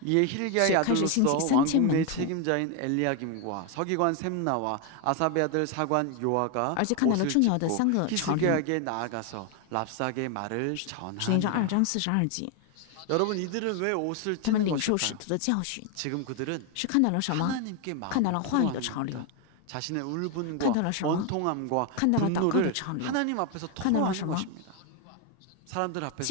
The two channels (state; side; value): different; both; correlation 0.01